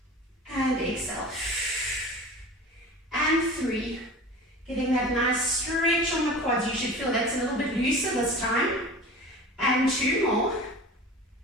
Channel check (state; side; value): normal; both; correlation 0.37